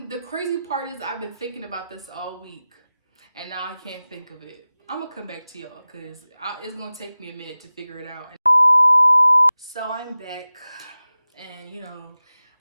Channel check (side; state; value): both; inverted; correlation -0.96